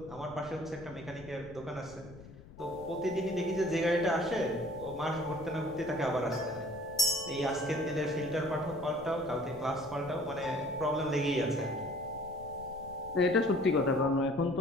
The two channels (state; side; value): noise; left; rumble, 18 dB below the sound